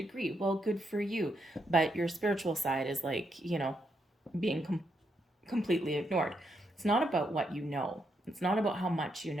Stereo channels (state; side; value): normal; both; correlation 0.79